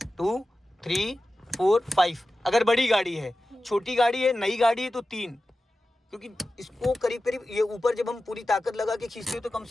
2 3 4 5। अगर बड़ी गाड़ी है, छोटी गाड़ी है, नई गाड़ी है तो 3, क्योंकि इसको करीब करीब ये ऊपर जब हम पूरी ताकत लगा के खींचते हैं तो कम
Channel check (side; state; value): both; normal; correlation 0.94